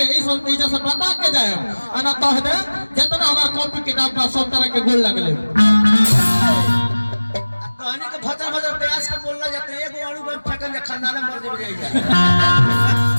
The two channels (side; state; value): both; inverted; correlation -1.00